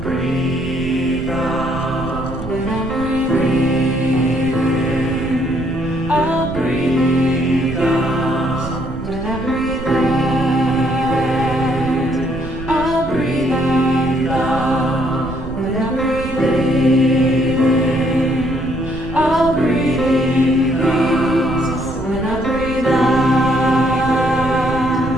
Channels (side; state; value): right; noise; rumble, 11 dB below the sound